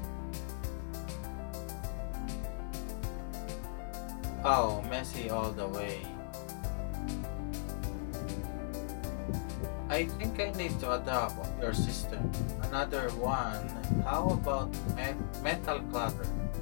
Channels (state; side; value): silent; right; digital silence